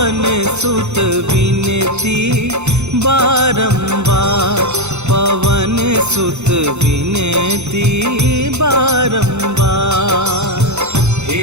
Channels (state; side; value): late; left; 0.82 ms